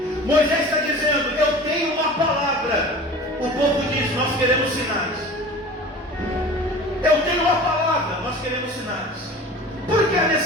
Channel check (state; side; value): normal; both; correlation 0.39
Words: Moisés está dizendo: eu tenho uma palavra. O povo diz: nós queremos sinais. Eu tenho uma palavra, nós queremos sinais. Por que a